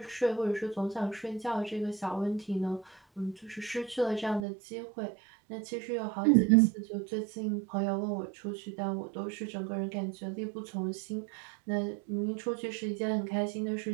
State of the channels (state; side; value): drops out; left; at 4.5 s